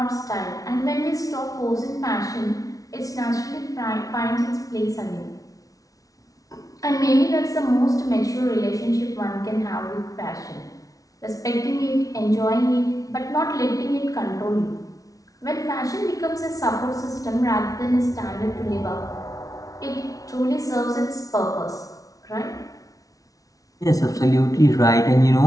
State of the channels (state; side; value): late; right; 0.17 ms